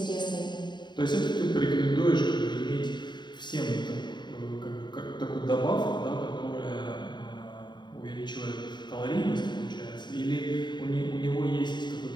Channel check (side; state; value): right; late; 0.22 ms